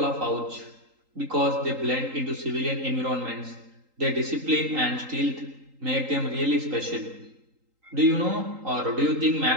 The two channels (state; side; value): late; left; 3.8 ms